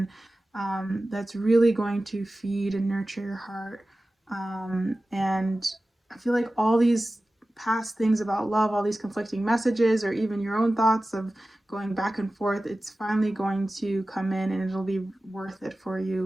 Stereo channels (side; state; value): both; normal; correlation 0.96